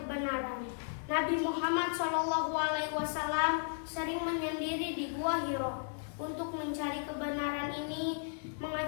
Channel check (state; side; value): silent; right; digital silence